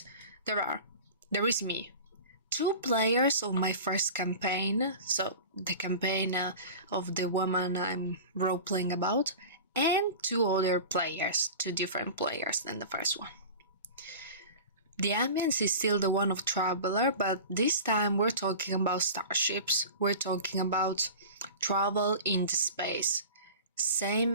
me, 2 players of my first campaign, so the campaign of the woman I'm role-playing about, and 2 other players, 2 different players than the first one. The ambience is still the one of Traveler, but this time we're talking about starships, we're talking about travel into space.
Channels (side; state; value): both; inverted; correlation -0.36